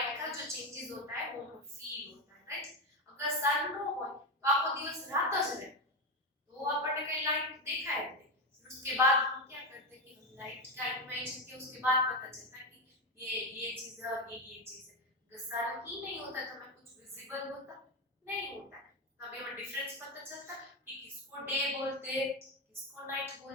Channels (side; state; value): both; normal; correlation 0.13